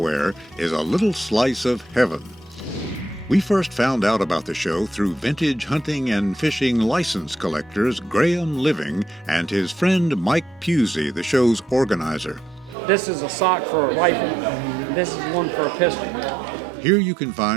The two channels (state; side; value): drops out; left; at 12.8 s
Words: is a little slice of heaven. We first found out about the show through vintage hunting and fishing license collectors Graham Living and his friend Mike Pusey, the show's organizer. This is a sock for a rifle. This is one for a pistol. Here you can